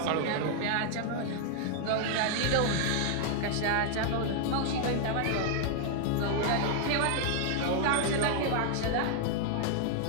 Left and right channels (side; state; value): both; different; correlation 0.00